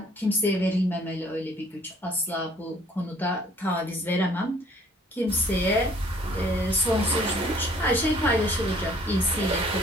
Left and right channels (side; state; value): both; normal; correlation 0.57